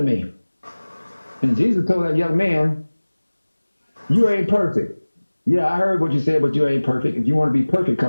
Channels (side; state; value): both; inverted; correlation -1.00